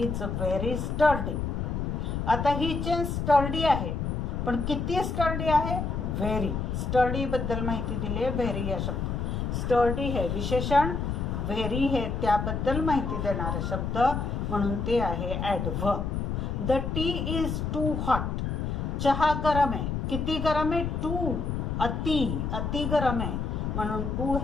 व्हेरी स्टर्डी. आता ही चेन स्टर्डी आहे, पण किती स्टर्डी आहे? व्हेरी. स्टर्डी बद्दल माहिती दिली आहे व्हेरी या शब्द. स्टर्डी हे विशेषण, व्हेरी हे त्याबद्दल माहिती देणारा शब्द, म्हणून ते आहे adverb. The tea is too hot. चहा गरम आहे. किती गरम आहे? टू. अति गरम आहे, म्हणून टू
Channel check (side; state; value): left; noise; rumble, 2 dB below the sound